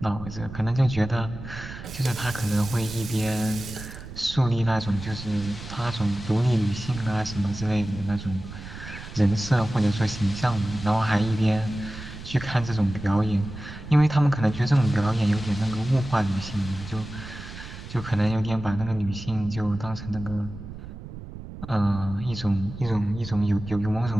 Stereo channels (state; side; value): noise; right; rumble, 12 dB below the sound